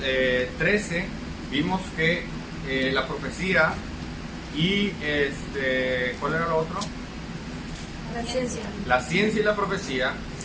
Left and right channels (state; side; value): identical; both; correlation 1.00